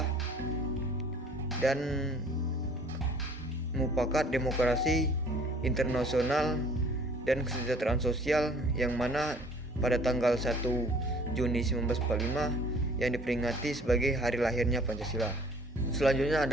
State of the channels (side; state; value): both; normal; correlation 0.54